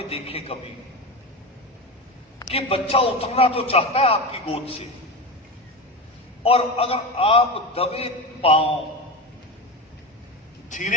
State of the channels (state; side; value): normal; both; correlation 0.22